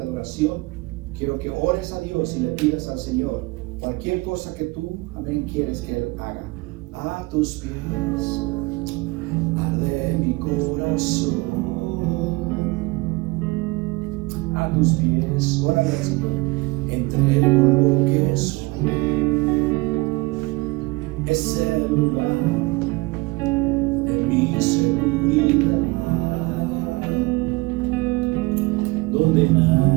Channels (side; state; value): left; quieter; 23.9 dB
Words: adoración, quiero que ores a Dios y le pidas al Señor cualquier cosa que tú, amén, quieres que Él haga. A tus pies arde mi corazón. A tus pies, órale al Señor, entrego lo que soy. Es el lugar de mi seguridad, donde